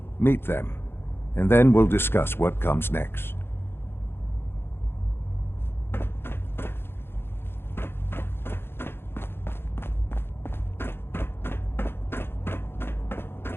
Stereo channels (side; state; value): right; late; 0.11 ms